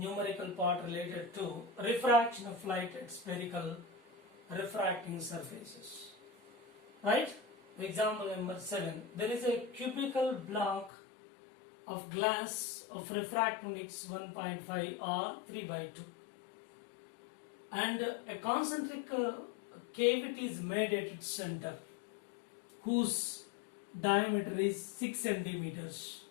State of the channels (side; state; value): right; drops out; at 10.9 s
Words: part related to refraction of light at spherical refracting surfaces. Right? Example number 7. There is a cubical block of glass of refractive index 1.5 or 3 by 2 and a concentric cavity is made at its center whose diameter is 6 centimeters.